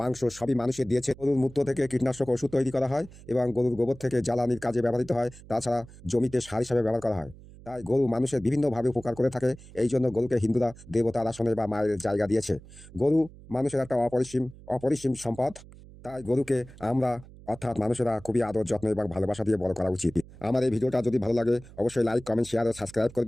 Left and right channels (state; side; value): noise; right; hum, 20 dB below the sound